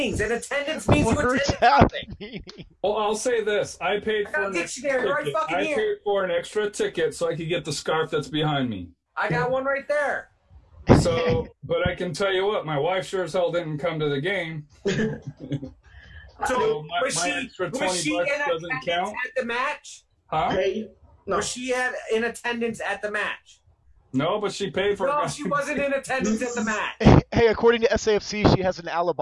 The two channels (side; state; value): both; identical; correlation 1.00